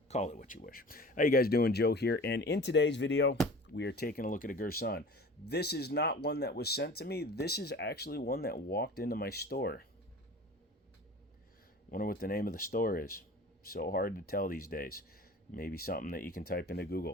call it what you wish. How you guys doing? Joe here, and in today's video, we are taking a look at a Girsan. This is not one that was sent to me. This is actually one that walked into my store. Wonder what the name of the store is. So hard to tell these days. Maybe something that you can type into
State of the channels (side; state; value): both; normal; correlation 0.41